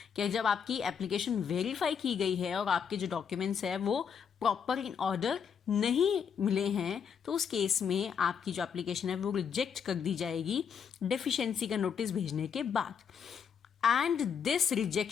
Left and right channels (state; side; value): quieter; right; 7.1 dB